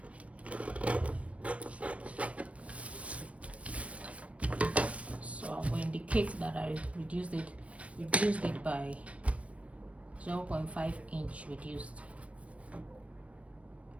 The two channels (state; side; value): late; left; 0.064 ms